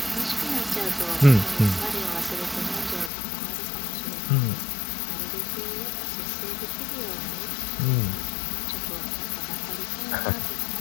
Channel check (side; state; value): right; drops out; at 3.1 s